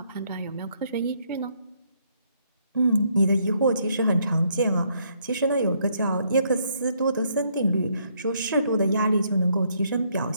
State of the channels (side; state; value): both; inverted; correlation -0.71